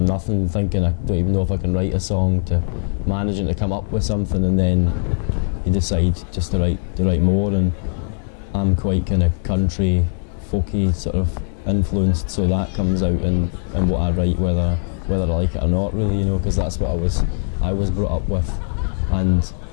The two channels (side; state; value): right; silent; 59 dB below the other